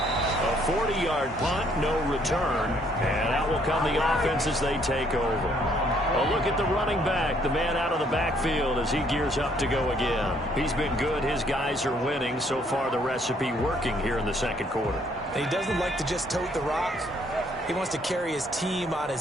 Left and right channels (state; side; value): normal; both; correlation 0.66